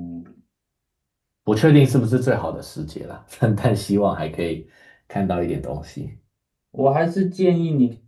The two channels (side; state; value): both; identical; correlation 1.00